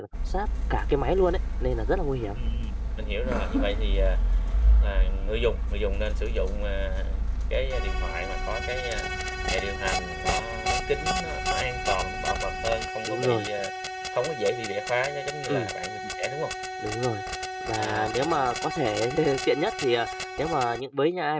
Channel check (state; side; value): identical; both; correlation 1.00